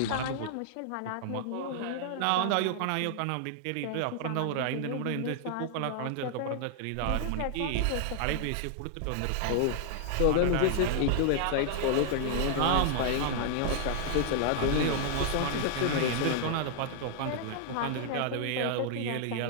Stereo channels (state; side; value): different; both; correlation 0.00